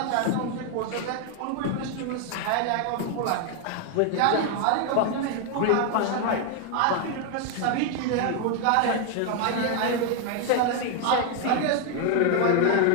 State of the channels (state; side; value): different; both; correlation 0.00